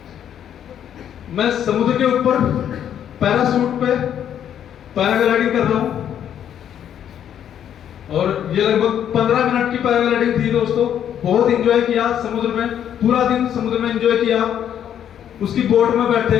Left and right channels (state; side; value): quieter; right; 9.7 dB